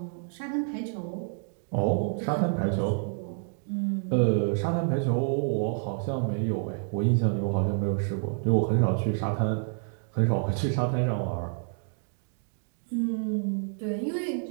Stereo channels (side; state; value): left; silent; 59 dB below the other